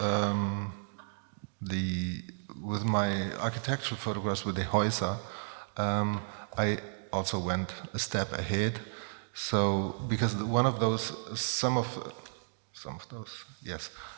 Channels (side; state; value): left; silent; digital silence